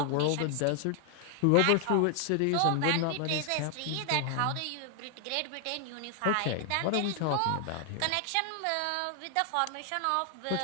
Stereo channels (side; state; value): both; different; correlation 0.00